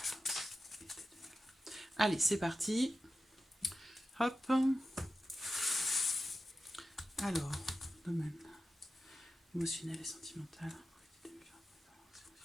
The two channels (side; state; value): both; normal; correlation 0.92